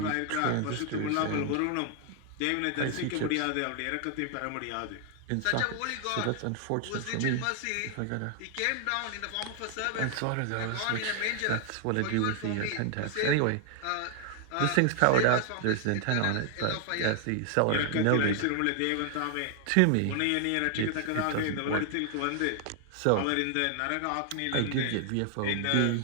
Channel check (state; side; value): different; both; correlation 0.00